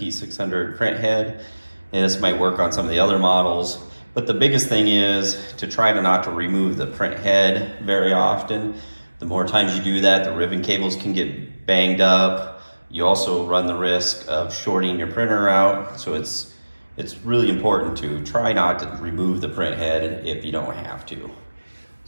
printhead. And this might work on some of the other models, but the biggest thing is to try to not to remove the printhead very often. The more times you do that, the ribbon cables can get banged up. You also run the risk of shorting your printer out, so it's really important to try not to remove the printhead if you don't have to.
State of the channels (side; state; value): both; inverted; correlation -1.00